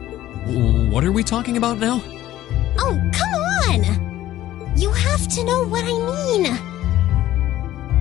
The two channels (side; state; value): right; quieter; 14.0 dB